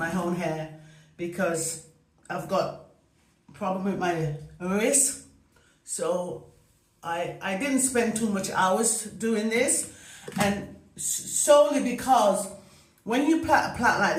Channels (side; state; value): both; identical; correlation 1.00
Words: hair, because I've got a problem with my wrist. So I didn't spend too much hours doing this, and solely because when you plait a plait like